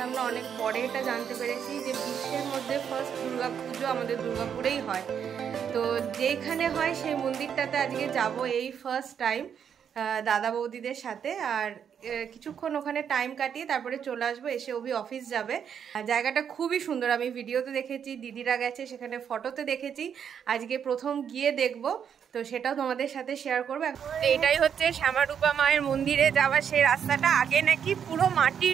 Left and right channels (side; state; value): left; quieter; 8.0 dB